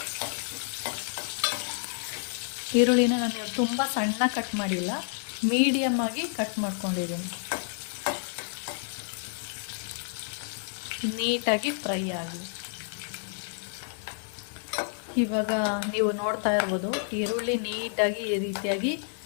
ಈರುಳ್ಳಿನ ನಾನು ತುಂಬ ಸಣ್ಣ ಕಟ್ ಮಾಡಿಲ್ಲ, ಮೀಡಿಯಮ್ ಆಗಿ ಕಟ್ ಮಾಡ್ಕೊಂಡಿದ್ದೀನಿ. ನೀಟಾಗಿ ಫ್ರೈ ಆಗಿ, ಇವಾಗ ನೀವು ನೋಡ್ತಾ ಇರ್ಬೋದು, ಈರುಳ್ಳಿ ನೀಟಾಗಿ ಈ ರೀತಿಯಾಗಿ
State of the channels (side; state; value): right; silent; digital silence